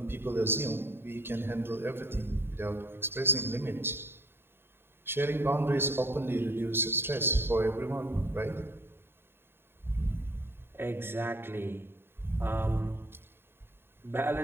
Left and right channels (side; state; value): left; late; 0.11 ms